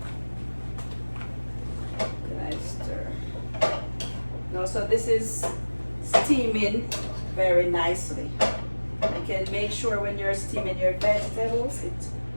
So this is steaming very nicely. You can make sure when you're steaming your vegetables,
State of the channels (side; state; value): both; inverted; correlation -1.00